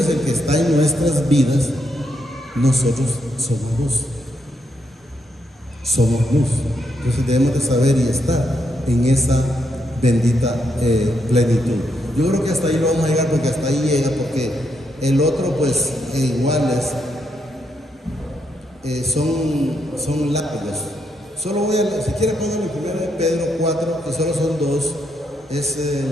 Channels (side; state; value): both; normal; correlation 0.79